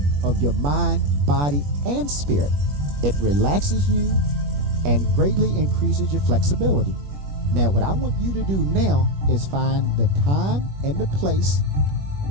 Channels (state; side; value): late; left; 21 ms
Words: of your mind, body, and spirit. It relaxes you and greatly increases your flexibility. Now, what I want you to do now is find the time and the place